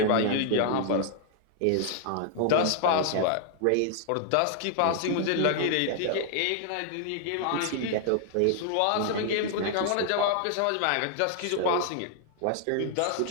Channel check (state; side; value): different; both; correlation 0.00